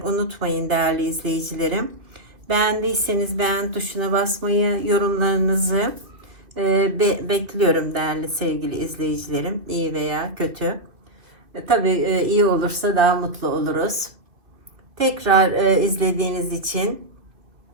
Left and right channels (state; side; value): late; left; 2.5 ms